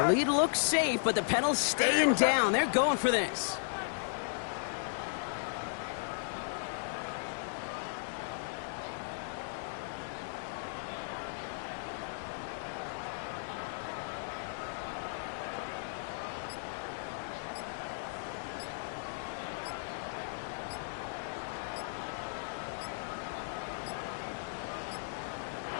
lead looks safe, but the Penals staying down. They're going for this.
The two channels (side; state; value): right; silent; digital silence